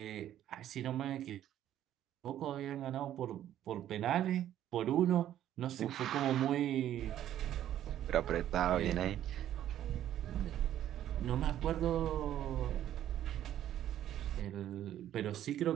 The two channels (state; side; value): quieter; left; 11.7 dB